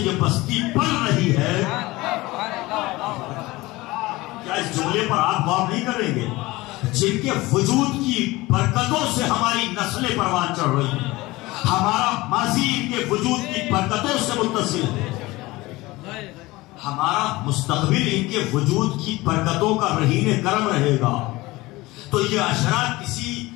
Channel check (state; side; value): quieter; right; 20.3 dB